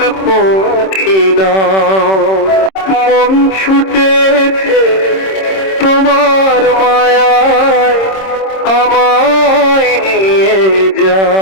পাখি নাও। মন ছুটেছে তোমার মায়ায়, আমায় নিয়ে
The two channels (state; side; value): late; right; 26 ms